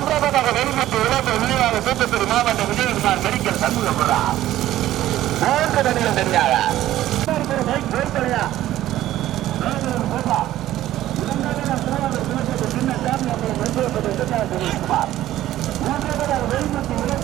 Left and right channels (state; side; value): quieter; left; 14.0 dB